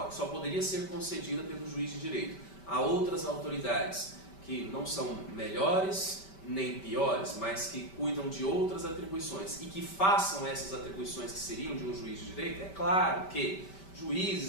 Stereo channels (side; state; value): right; late; 5.1 ms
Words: que só poderia ser concedida pelo juiz de direito a outras autoridades que não são melhores nem piores, mas que cuidam de outras atribuições e que façam essas atribuições que seriam de um juiz de direito, é claro que